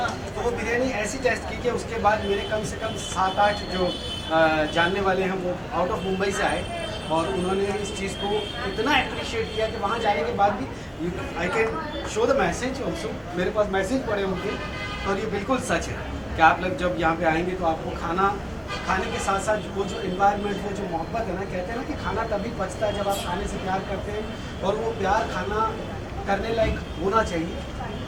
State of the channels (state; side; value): identical; both; correlation 1.00